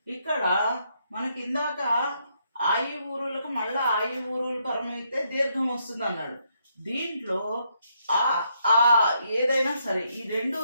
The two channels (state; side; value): inverted; both; correlation -0.75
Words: ఇక్కడ మనకి ఇందాక ఆయి ఊరులకు మళ్ళా ఆయి ఊరులు పరమైతే దీర్ఘం వస్తుంది అన్నాడు. దీంట్లో ఆ ఏదైనా సరే ఈ రెండు